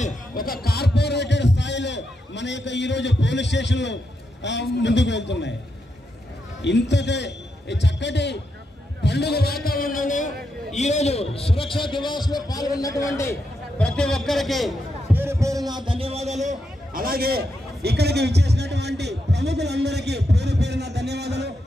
ఒక కార్పొరేటెడ్ స్థాయిలో మన యొక్క ఈరోజు పోలీస్ స్టేషన్లు ముందుకు వెళ్తున్నాయి. ఇంతటి చక్కటి పండుగ వాతావరణంలో ఈరోజు సురక్షా దివాస్ లో పాల్గొన్నటువంటి ప్రతి ఒక్కరికి పేరు పేరున ధన్యవాదాలు. అలాగే ఇక్కడికి విచ్చేసినటువంటి ప్రముఖులందరికీ పేరు పేరున ధన్యవాదాలు.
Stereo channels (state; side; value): normal; both; correlation 0.83